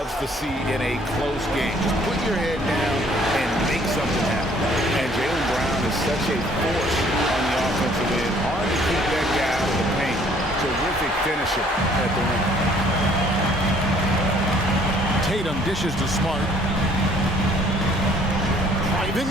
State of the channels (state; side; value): normal; both; correlation 0.59